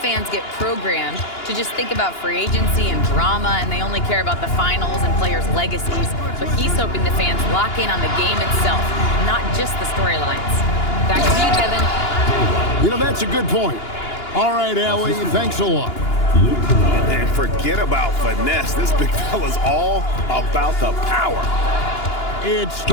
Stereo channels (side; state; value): right; late; 2.9 ms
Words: get programmed to just think about free agency and drama, and they only care about the finals and players' legacies. But he's hoping the fans lock in on the game itself, not just the storylines. Back to you, Kevin. You know, that's a good point. All right, Allie, thanks a lot. And forget about finesse. This big fella's all about the power. It's